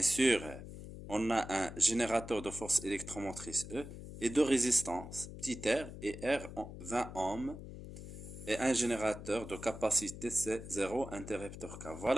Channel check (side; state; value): left; noise; hum, 11 dB below the sound